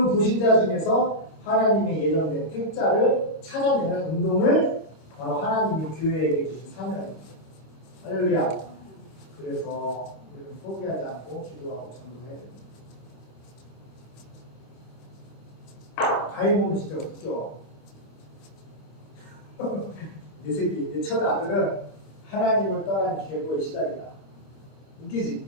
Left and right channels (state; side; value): late; right; 29 ms